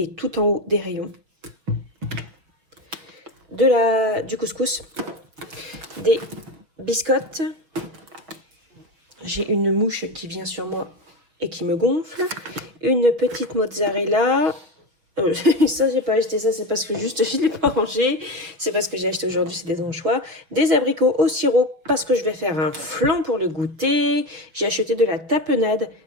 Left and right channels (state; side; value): late; left; 6.0 ms